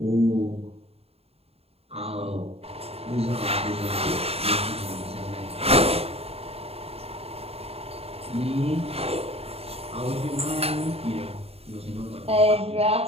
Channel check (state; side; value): late; left; 0.29 ms